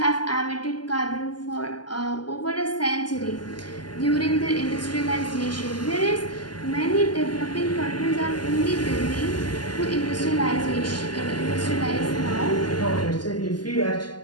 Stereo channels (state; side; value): late; right; 0.71 ms